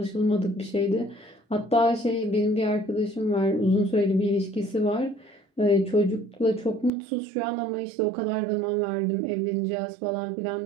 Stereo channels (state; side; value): drops out; left; at 6.9 s